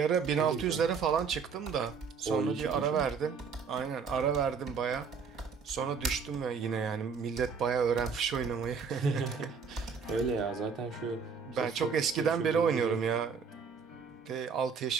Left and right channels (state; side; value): quieter; left; 5.8 dB